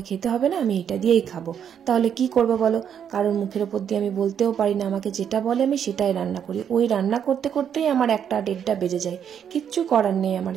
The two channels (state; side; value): quieter; left; 8.5 dB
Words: খেতে হবে না, আমি এটা দিয়েই খাবো। তাহলে কি করবো বলো, কারোর মুখের ওপর দিয়ে আমি বলতেও পারি না, আমাকে যেটা বলে আমি সেটাই রান্না করি। ওই রান্না করতে করতেই আমার 1টা-1.5টা বেজে যায়, কিচ্ছু করার নেই আমার,